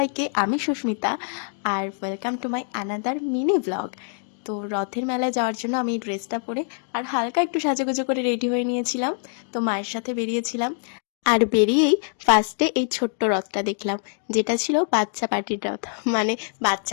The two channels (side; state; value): right; silent; 62 dB below the other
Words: আমি সুস্মিতা আর welcome to my another mini vlog. তো রথের মেলায় যাওয়ার জন্য আমি এই ড্রেসটা পরে আর হালকা একটু সাজুগুজু করে রেডি হয়ে নিয়েছিলাম। তো মায়ের সাথে বেরিয়েছিলাম, আর বেরিয়েই ফার্স্টে এই ছোট্ট রথটা দেখলাম, যেটা ছিল বাচ্চা পার্টির রথ, মানে